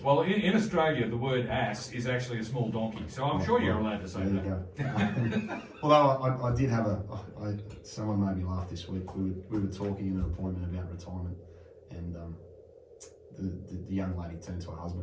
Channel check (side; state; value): both; identical; correlation 1.00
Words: Well, in Australia, the word ass is actually a small donkey, so I'm sure you're allowed to say that. There you go. Although I did have someone made me laugh this week. We were talking in an appointment about retirement, and the young lady turned to her